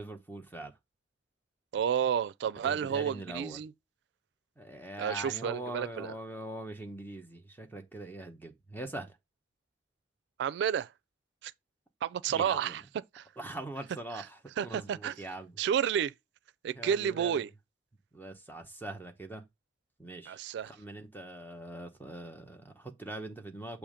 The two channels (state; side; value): quieter; left; 7.0 dB